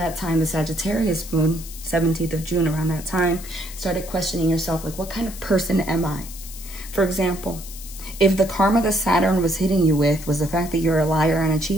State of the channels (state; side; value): noise; left; hiss, 14 dB below the sound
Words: time, the Sagittarius moon, 17th of June, around that time, started questioning yourself, like, what kind of person am I? For example, if the karma that Saturn was hitting you with was the fact that you're a liar and a